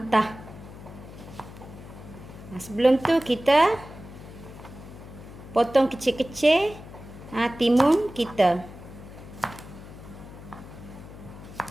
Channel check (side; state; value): left; noise; hum, 15 dB below the sound